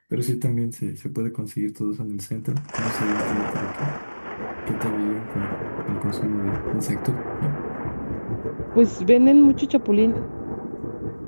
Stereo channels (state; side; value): inverted; both; correlation -1.00